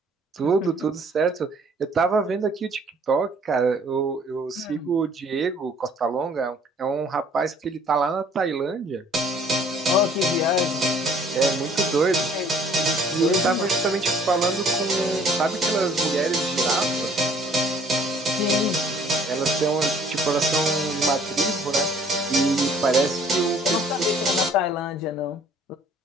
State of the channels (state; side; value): normal; both; correlation 0.57